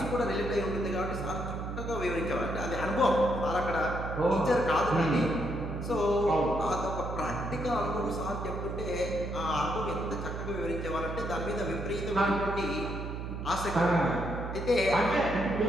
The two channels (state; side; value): noise; right; hum, 6 dB below the sound